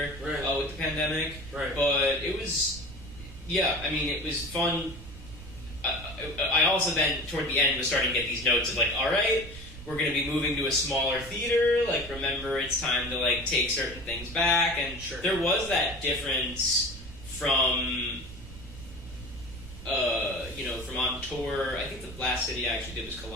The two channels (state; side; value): noise; right; rumble, 14 dB below the sound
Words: with the pandemic. Right. But it was, it was fun. I also then, toward the end, was starting to get these notes of like, all right, we're going to be moving to a smaller theater. Like, remember, it's time to like take certain things back. And there was that difference from, from on tour. I think the last city I actually did was